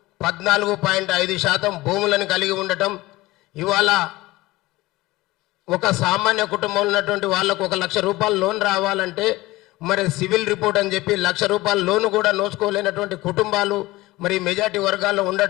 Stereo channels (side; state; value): right; quieter; 19.4 dB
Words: 14.5% భూములను కలిగి ఉండటం, ఇవాళ ఒక సామాన్య కుటుంబంలో ఉన్నటువంటి వాళ్ళకు 1 లక్ష రూపాయల లోన్ రావాలంటే మరి సివిల్ రిపోర్ట్ అని చెప్పి 1 లక్ష రూపాయల లోన్ కూడా నోచుకోలేనటువంటి కుటుంబాలు మరి మెజార్టీ వర్గాల్లో